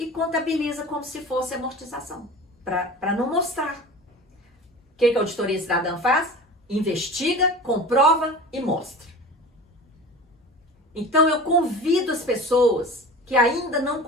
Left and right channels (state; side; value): normal; both; correlation 0.36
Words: contabiliza como se fosse amortização, para não mostrar. O que a Auditoria Cidadã faz? investiga, comprova e mostra. Então eu convido as pessoas que ainda não